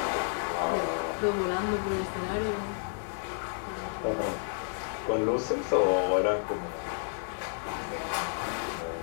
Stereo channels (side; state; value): right; silent; 57 dB below the other